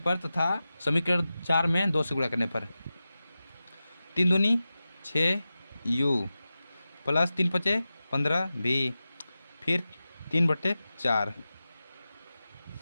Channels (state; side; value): inverted; both; correlation -0.94